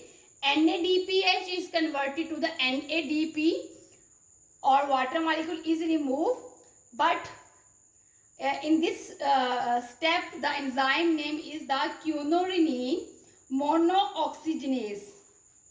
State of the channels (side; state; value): both; identical; correlation 1.00